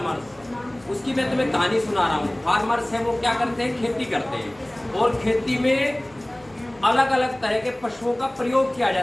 उसकी मैं तुम्हें कहानी सुना रहा हूँ। फार्मर्स है वो क्या करते हैं? खेती करते हैं। और खेती में अलग अलग तरह के पशुओं का प्रयोग किया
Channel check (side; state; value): left; noise; hum, 29 dB below the sound